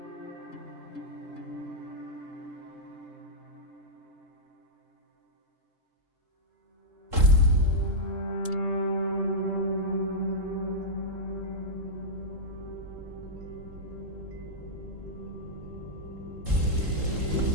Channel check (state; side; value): late; left; 3.8 ms